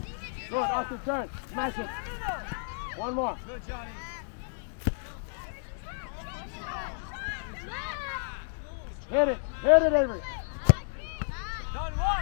Good, Austin, turn. Smash it. One more. Hit it, Avery.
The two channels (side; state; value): right; silent; digital silence